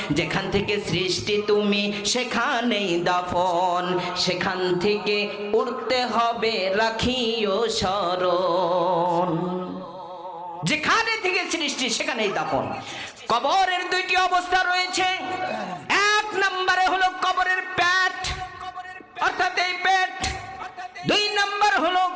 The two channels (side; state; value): both; identical; correlation 1.00